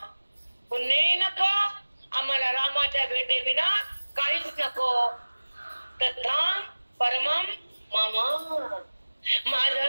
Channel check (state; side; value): inverted; both; correlation -1.00